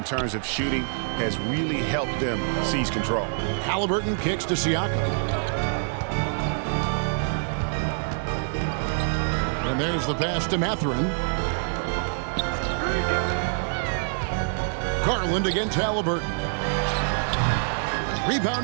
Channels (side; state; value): left; silent; digital silence